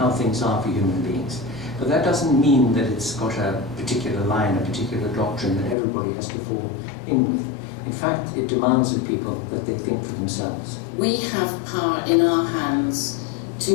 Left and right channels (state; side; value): drops out; right; at 5.8 s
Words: things are for human beings. But that doesn't mean that it's got a particular line, a particular doctrine that everybody has to fall in with. In fact, it demands of people that they think for themselves. We have power in our hands